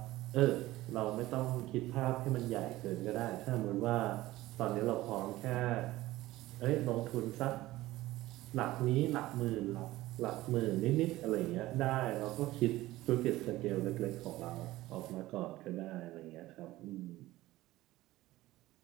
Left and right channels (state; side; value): quieter; left; 17.1 dB